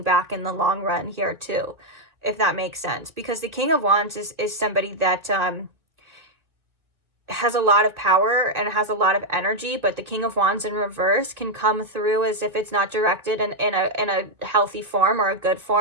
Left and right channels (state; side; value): late; left; 1.7 ms